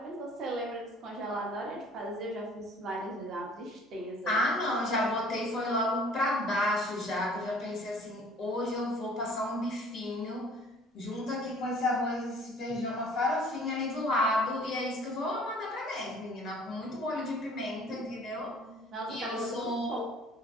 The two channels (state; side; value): normal; both; correlation 0.52